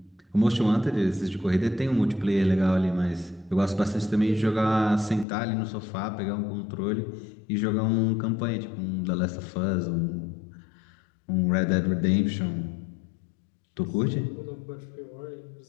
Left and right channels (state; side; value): drops out; right; at 5.2 s